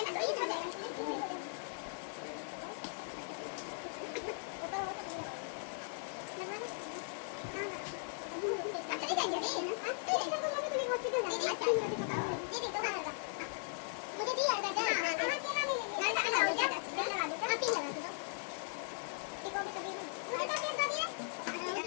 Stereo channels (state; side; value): silent; right; digital silence